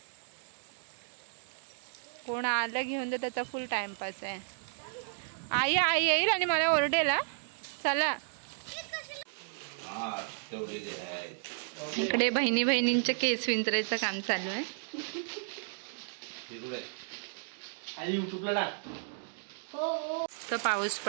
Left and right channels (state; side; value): silent; left; digital silence